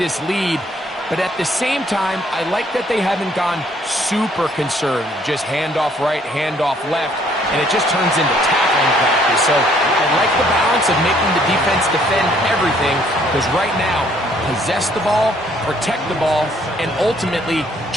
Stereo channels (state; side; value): normal; both; correlation 0.64